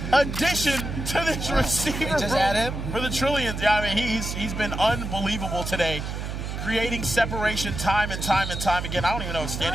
addition to this receiver room for the Trillions. Yeah, I mean, he's been unbelievable today, creating separation time and time again. I don't even know if Stand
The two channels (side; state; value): right; noise; hum, 5 dB below the sound